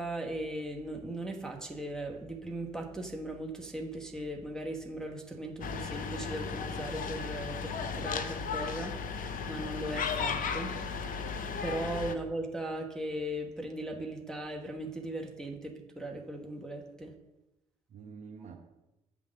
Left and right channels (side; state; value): both; normal; correlation 0.47